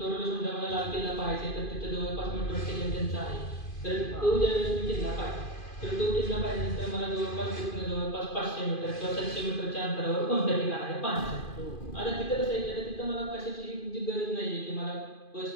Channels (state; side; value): late; right; 2.5 ms